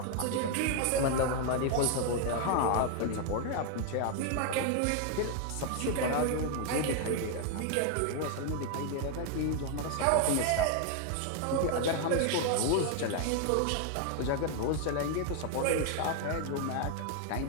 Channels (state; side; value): different; both; correlation 0.00